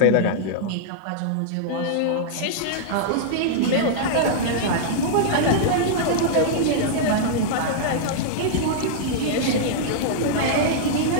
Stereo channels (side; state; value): both; different; correlation -0.02